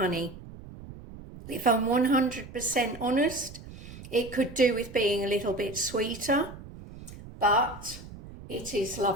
If I'm 100% honest, it could do with being a little bit sweeter, but it is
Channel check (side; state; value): right; noise; rumble, 15 dB below the sound